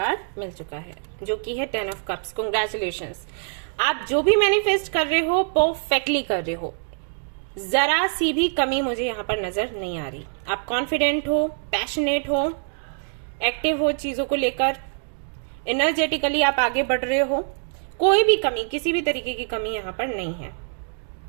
मिल चुका है, जो कि है 10 ऑफ कप्स। कांग्रेचुलेशंस, आप जो भी मैनिफेस्ट कर रहे हो परफेक्टली कर रहे हो, जरा सी भी कमी मुझे यहाँ पर नजर नहीं आ रही। आप कॉन्फिडेंट हो, पैशनेट हो, एक्टिव हो चीजों को लेकर, एनर्जेटिकली आप आगे बढ़ रहे हो, कोई भी कमी, किसी भी तरीके की कमी यहाँ पर नहीं है।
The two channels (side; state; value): left; silent; digital silence